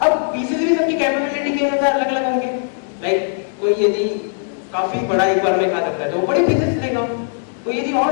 अब पीसेस भी सबकी कैपेबिलिटी के अनुसार अलग अलग होंगे। लाइक कोई यदि काफी बड़ा एक बार में खा सकता है तो वो बड़े पीसेस लेगा, कोई यदि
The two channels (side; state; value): right; silent; digital silence